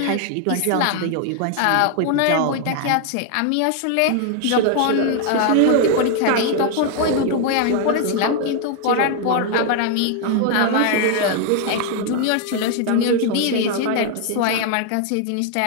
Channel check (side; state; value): both; different; correlation 0.00